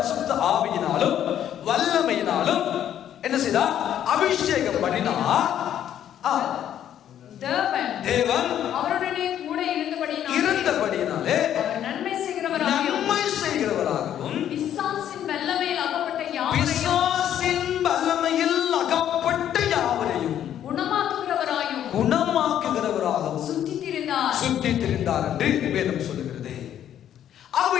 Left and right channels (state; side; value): quieter; right; 10.5 dB